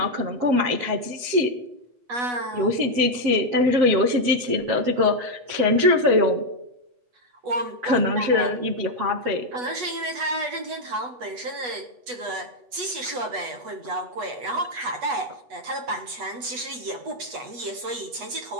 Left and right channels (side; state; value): left; late; 8.2 ms